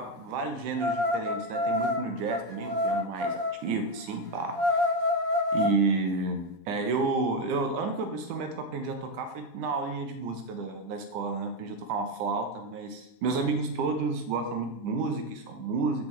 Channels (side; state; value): left; late; 10 ms